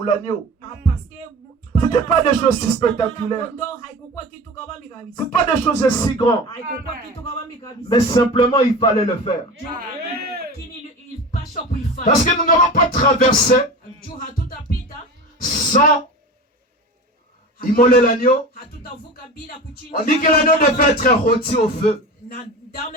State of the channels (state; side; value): normal; both; correlation 0.32